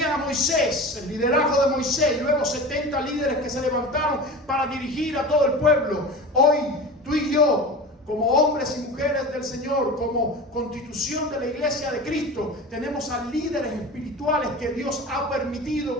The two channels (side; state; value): both; normal; correlation 0.32